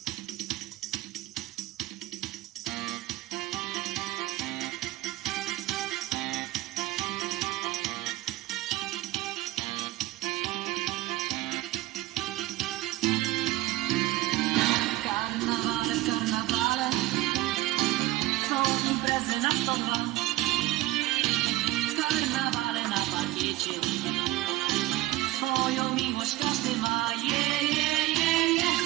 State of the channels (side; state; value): left; quieter; 17.3 dB